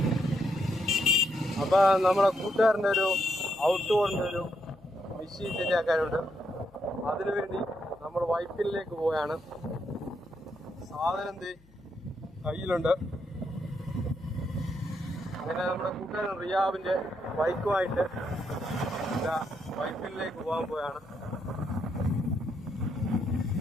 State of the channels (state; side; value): noise; left; hum, 28 dB below the sound